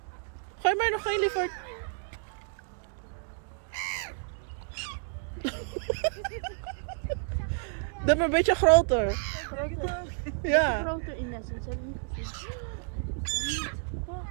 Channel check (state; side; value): silent; left; 57 dB below the other